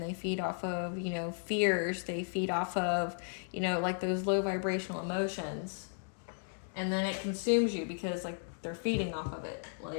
feed off of fears, they feed off of like those low vibrational emotions, and then it consumes you because like they're feeding off of it.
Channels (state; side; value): silent; right; digital silence